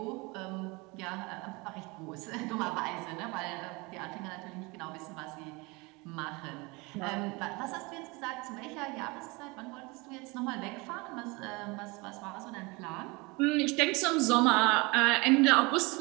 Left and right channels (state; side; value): quieter; left; 26.1 dB